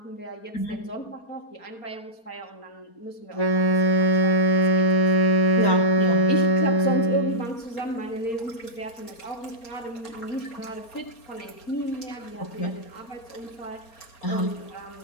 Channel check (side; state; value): right; late; 4.3 ms